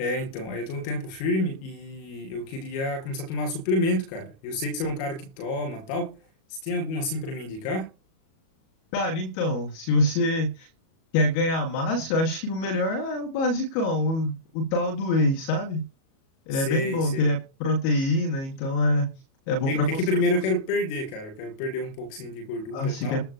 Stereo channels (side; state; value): right; late; 37 ms